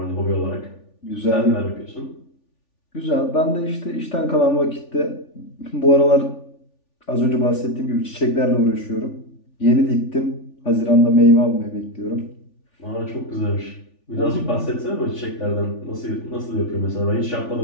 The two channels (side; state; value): right; late; 3.4 ms